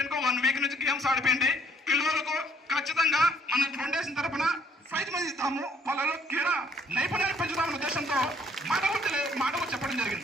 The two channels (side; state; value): both; normal; correlation 0.64